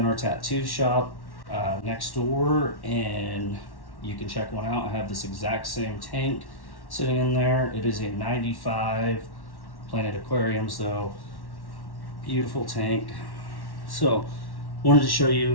our tattoo shop next door and you can check one out. I have this exact same tank sitting in there. It is a 95 Planet Aquariums though. Beautiful tank. So wanted to show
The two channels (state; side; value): late; right; 1.1 ms